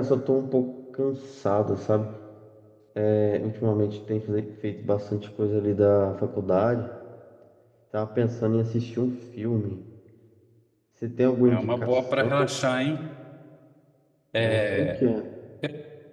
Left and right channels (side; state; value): both; identical; correlation 1.00